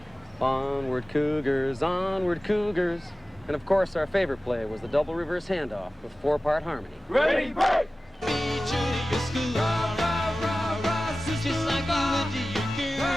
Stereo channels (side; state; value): both; normal; correlation 0.96